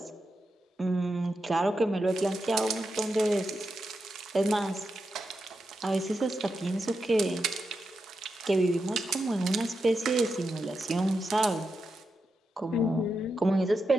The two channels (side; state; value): both; normal; correlation 0.87